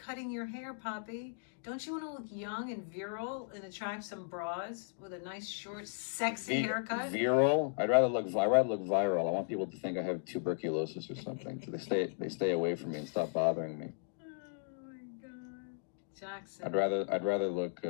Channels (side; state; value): right; silent; digital silence